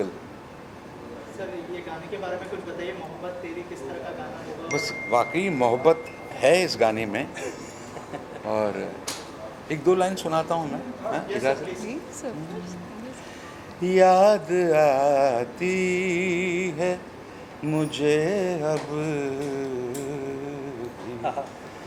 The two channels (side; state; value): both; identical; correlation 1.00